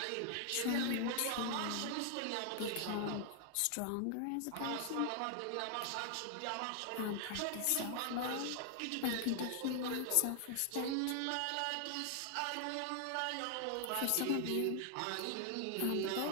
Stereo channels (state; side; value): different; both; correlation 0.00